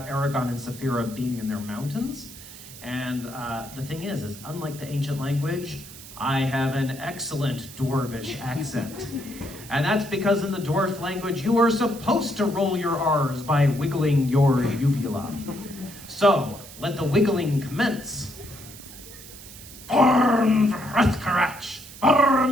Aragon and Saphira being in their mountains. And the thing is unlike the ancient language, I have an excellent dwarvish accent. And that's because in the dwarf language, you are supposed to roll your R's by wiggling your uvula. So, let the wiggling commence. Born Vrethkarach,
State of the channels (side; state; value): right; noise; hiss, 16 dB below the sound